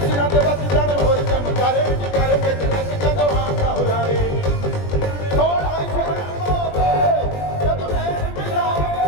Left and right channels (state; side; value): late; right; 20 ms